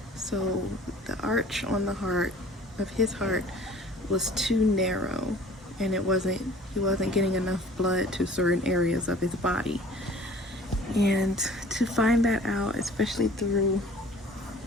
So the arch on the heart of his heart was too narrow, and he wasn't getting enough blood to certain areas of his body. And to find that out, especially during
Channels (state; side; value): normal; both; correlation 0.48